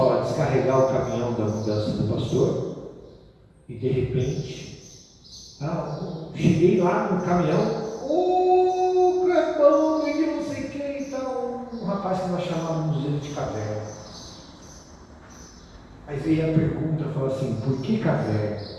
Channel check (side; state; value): both; identical; correlation 1.00